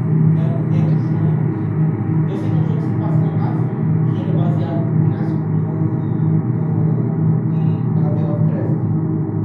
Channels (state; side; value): identical; both; correlation 1.00